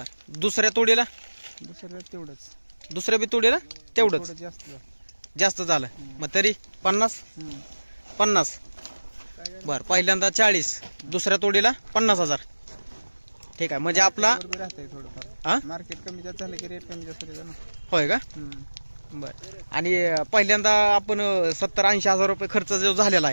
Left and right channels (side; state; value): both; inverted; correlation -1.00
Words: दुसऱ्या तोडीला? तेवढंच. दुसऱ्या बी तोडीला तेवढंच जास्त झालं. मग तरी 50. बर. पहिल्यांदा 40, दुसऱ्या तोडीला 50,000. ठीक आहे. म्हणजे आपला मार्केट कमी जास्त झालं की रेट कमी जास्त होते ना. होय का? बर. आणि पहिल्यांदा आपण 70-80 हजार रुपये खर्च जो झालेला